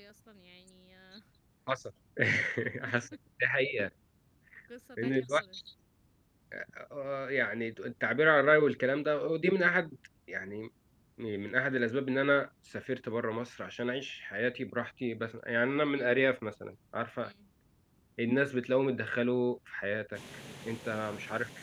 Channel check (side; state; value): both; identical; correlation 1.00